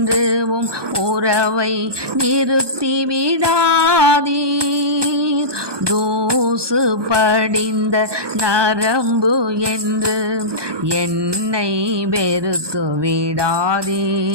உறவை நிறுத்தி விடாதீர். தூசு படிந்த நரம்பு என்று என்னை வெறுத்து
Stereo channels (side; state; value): left; late; 1.2 ms